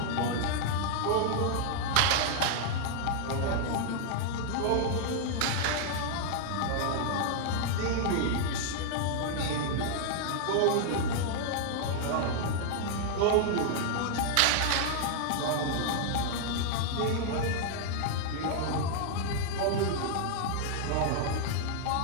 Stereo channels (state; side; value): different; both; correlation -0.01